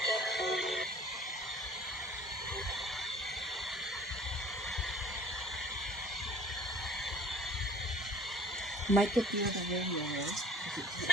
Might get the other radio right?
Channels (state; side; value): normal; both; correlation 0.49